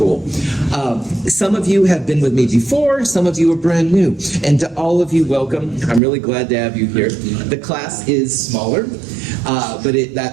Some of you have been with me before. Some of you are brand new. And to all of you, welcome. I'm really glad to have you here. The class is smaller. But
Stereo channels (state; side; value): drops out; left; at 6.0 s